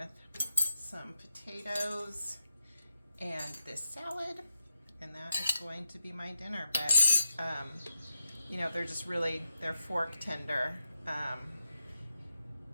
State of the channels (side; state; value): both; inverted; correlation -0.88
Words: some potatoes and this salad, and that is going to be my dinner. But, you know, they're just really, they're fork tender.